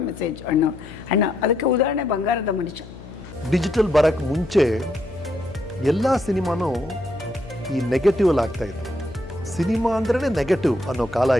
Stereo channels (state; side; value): noise; left; hum, 16 dB below the sound